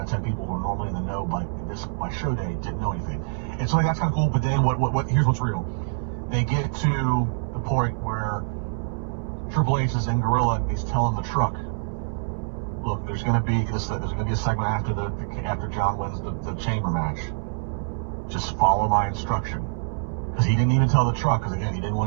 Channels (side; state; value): left; silent; digital silence